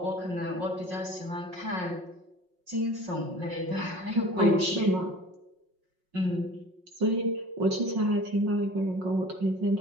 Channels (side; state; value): left; late; 5.5 ms